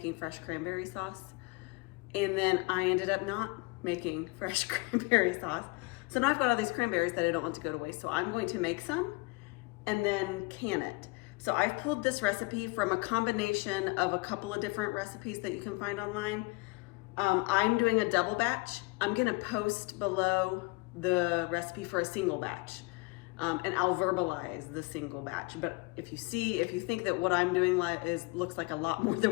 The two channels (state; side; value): quieter; right; 25.7 dB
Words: fresh cranberry sauce, and then I ended up not making fresh cranberry sauce. So now I've got all these cranberries that I don't want to go to waste. So I'm going to make some and then can it. So I've pulled this recipe from a combination of a couple of different recipes that you can find online. I'm doing a double batch. I'm gonna post below the recipe for a single batch, and I'll verbalize the single batch. But if you think that what I'm doing looks like a lot more than